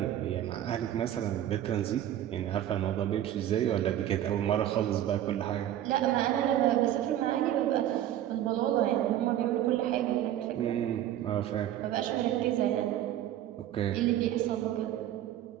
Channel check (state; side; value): quieter; left; 12.0 dB